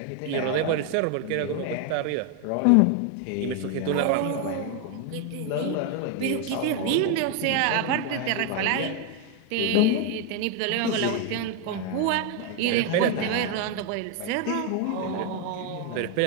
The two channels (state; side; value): different; both; correlation 0.01